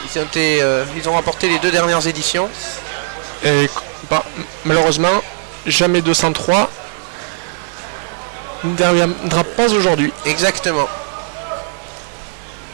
Ils ont remporté les 2 dernières éditions. Et malheureusement, jamais 203 ne reviendra pas aujourd'hui. Exactement.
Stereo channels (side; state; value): left; silent; digital silence